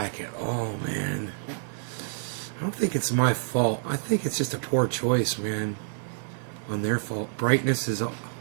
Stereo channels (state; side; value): silent; left; digital silence